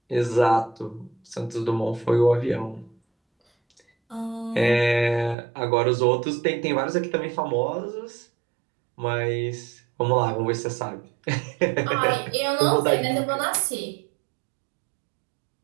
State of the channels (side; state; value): left; drops out; at 5.4 s